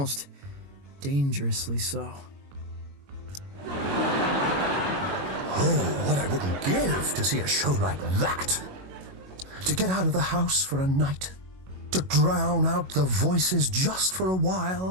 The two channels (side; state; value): left; late; 21 ms